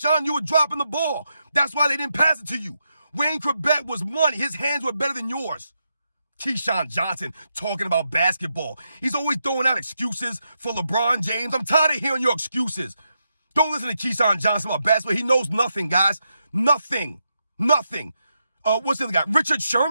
you were dropping the ball. That's why they didn't pass it to you. Wayne Corbett was money. His hands were better than yours. Keyshawn Johnson talking about basketball. He's always throwing out excuses for LeBron James. I'm tired of hearing your excuses. Don't listen to Keyshawn Johnson about basketball. He knows nothing, guys. Nothing. Nothing. What's the other guy? Richard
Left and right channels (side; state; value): both; inverted; correlation -0.84